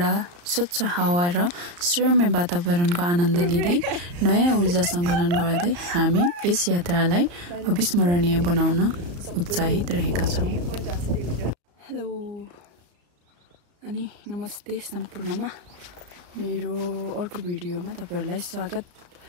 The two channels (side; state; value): left; late; 34 ms